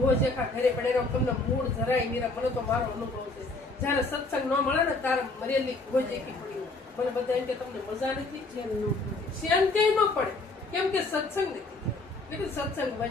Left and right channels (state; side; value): quieter; right; 3.3 dB